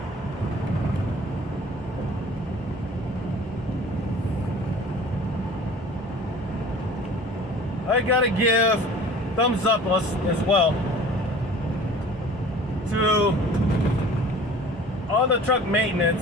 I gotta give thumbs up us as well to all the truck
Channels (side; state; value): both; normal; correlation 0.45